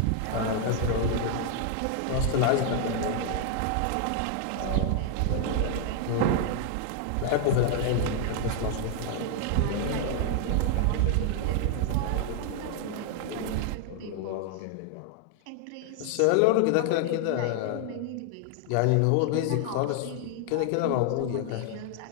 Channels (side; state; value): both; different; correlation 0.00